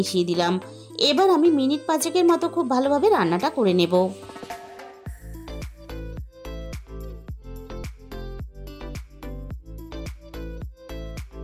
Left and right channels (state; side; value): identical; both; correlation 1.00